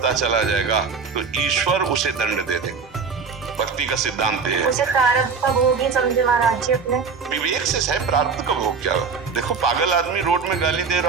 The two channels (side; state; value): left; quieter; 5.3 dB